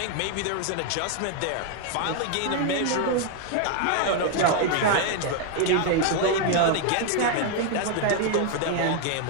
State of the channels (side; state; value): both; different; correlation 0.01